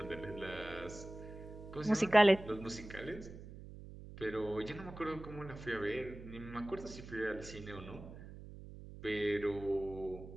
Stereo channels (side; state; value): right; noise; hum, 13 dB below the sound